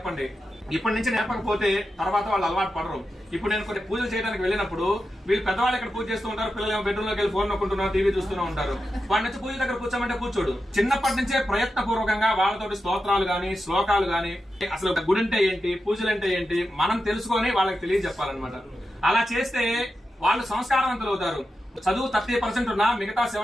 ఇప్పటి నుంచి నేర్పకపోతే తర్వాత వాళ్ళు అలవాటు పడరు. ఇప్పుడు నేను కొన్ని పూజలు చేయడానికి వెళ్ళినప్పుడు వీళ్ళు పెద్దవాళ్ళు ఇక్కడ పూజ చేస్తూ ఉంటారు, పిల్లలు ఏమో బెడ్రూమ్ లోకి వెళ్ళి ఫోన్ నొక్కుంటున్నారు, టీవీ చూస్తూనే ఉంటారు. వాడి నుంచి పూజ దగ్గర కూర్చోమంటే కూర్చోడు. చిన్నప్పటి నుంచే ప్రయత్నపూర్వకంగా వాళ్ళతోటి స్తోత్రాలు గాని, శ్లోకాలు గాని, అసలు గుడి అంటే ఏంటి, పూజలు అంటే ఏంటి మనం తెలుసుకొని వాళ్ళకి తెలియజెప్పాలన్నమాట. అలా చేస్తే వాళ్ళు సంస్కారవంతులు అవుతారు. చదువు 30% ఉన్నా మిగతా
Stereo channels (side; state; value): both; normal; correlation 0.90